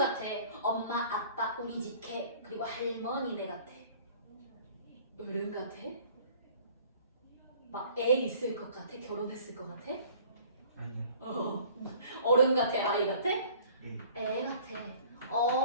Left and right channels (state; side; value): inverted; both; correlation -0.51